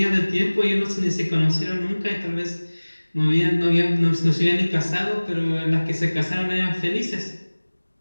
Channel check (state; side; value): inverted; both; correlation -1.00